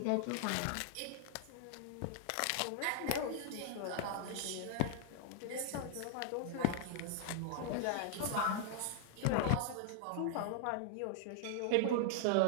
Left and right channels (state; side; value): different; both; correlation 0.00